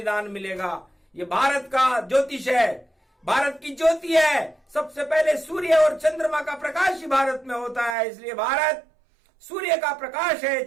मिलेगा। ये भारत का ज्योतिष है, भारत की ज्योति है। सबसे पहले सूर्य और चंद्रमा का प्रकाश ही भारत में होता है। इसलिए भारत सूर्य का प्रकाश है,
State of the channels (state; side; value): drops out; left; at 8.0 s